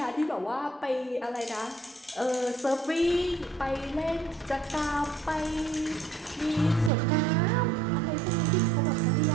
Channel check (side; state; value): left; drops out; at 6.9 s